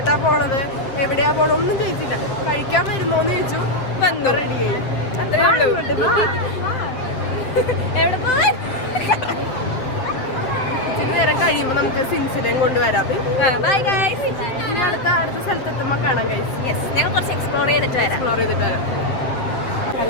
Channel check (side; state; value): right; late; 7.8 ms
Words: പോണത്, എവിടെയാ പോണ, ഒന്നും ചോദിച്ചില്ല. കഴിക്കാൻ വരുന്നോന്ന് ചോദിച്ചു, വന്നു, റെഡിയായി. അത്രേ ഉള്ളൂ. ഇച്ചിരി നേരം കഴിയുമ്പോ നമുക്ക് സിൻസിലേം കൊണ്ടുവരാം. Bye guys. ഇനി അടുത്ത സ്ഥലത്തെത്തുമ്പോ കാണാം ഗൈസ്. ഞങ്ങൾ കുറച്ച് എക്സ്പ്ലോർ ചെയ്തിട്ട് വരാം.